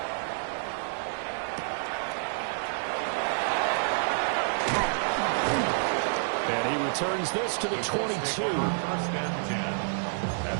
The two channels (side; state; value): left; silent; digital silence